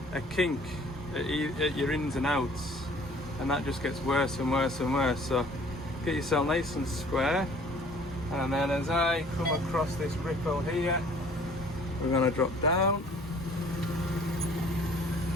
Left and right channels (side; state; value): both; normal; correlation 0.53